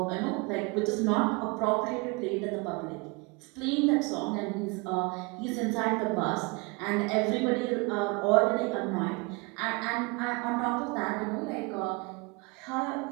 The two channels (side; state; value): left; quieter; 28.0 dB